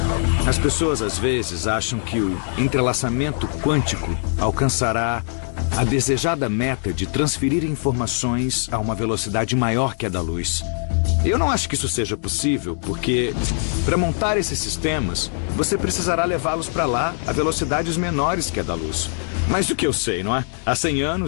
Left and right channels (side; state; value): right; silent; digital silence